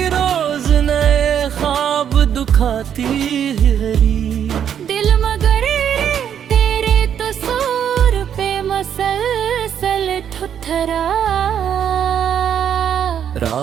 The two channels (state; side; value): quieter; left; 8.9 dB